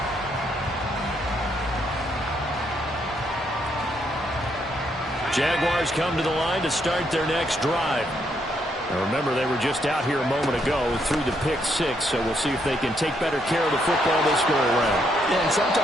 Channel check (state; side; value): normal; both; correlation 0.75